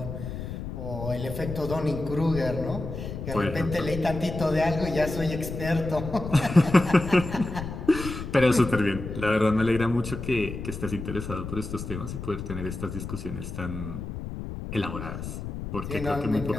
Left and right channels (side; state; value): left; noise; rumble, 7 dB below the sound